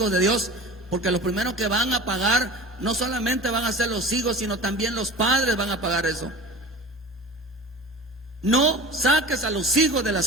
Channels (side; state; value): both; normal; correlation 0.36